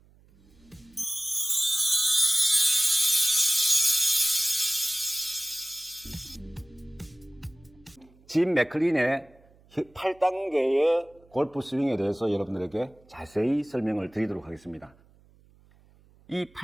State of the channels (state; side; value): noise; right; hum, 29 dB below the sound